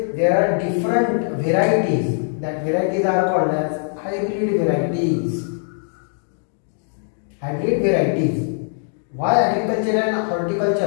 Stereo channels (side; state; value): right; silent; digital silence